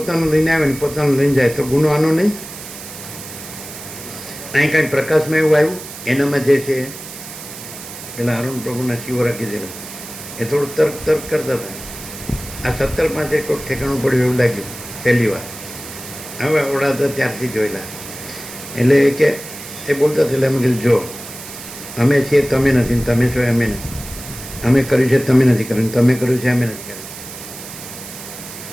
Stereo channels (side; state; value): right; noise; hiss, 13 dB below the sound